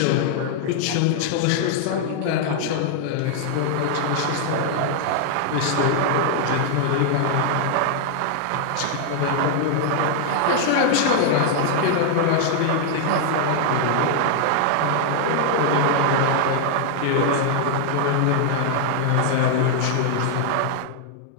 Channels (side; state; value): both; different; correlation 0.00